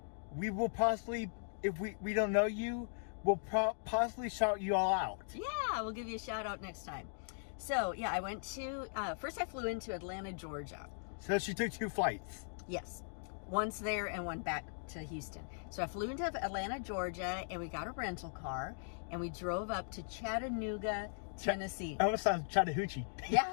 we will possibly, if we don't know you, we'll possibly shout you all out. Yeah, we'll give you a shout out next time. So, yeah, I went to, first I flew into Atlanta, Georgia. So she took 2 flights. Yes. Once there and one back to Houston. So I flew into Atlanta, Georgia, and we got a rental car, and we drove up to Chattanooga, Tennessee. That almost sounds Chattahoochee.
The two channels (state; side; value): silent; right; digital silence